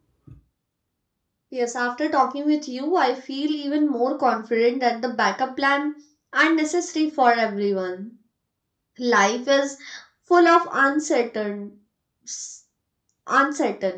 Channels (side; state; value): both; identical; correlation 1.00